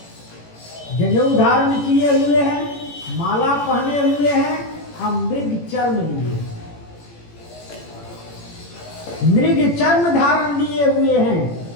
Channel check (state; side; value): late; right; 18 ms